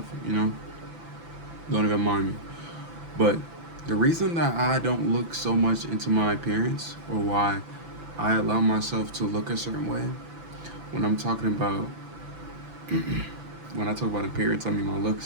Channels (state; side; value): late; left; 6.0 ms